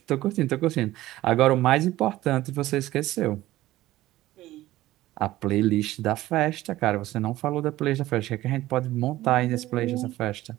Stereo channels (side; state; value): left; quieter; 16.1 dB